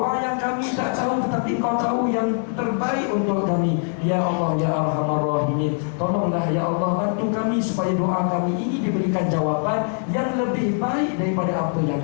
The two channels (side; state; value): right; silent; 58 dB below the other